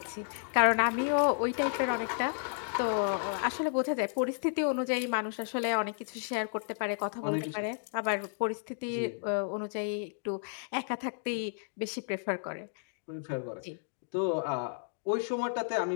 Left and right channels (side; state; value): right; silent; digital silence